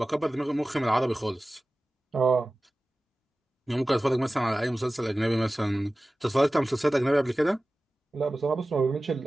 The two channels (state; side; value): normal; both; correlation 0.96